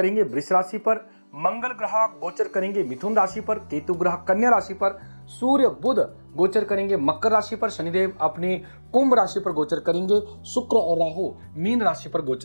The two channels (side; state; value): both; inverted; correlation -1.00